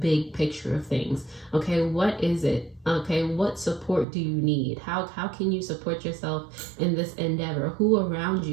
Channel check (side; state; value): left; drops out; at 4.0 s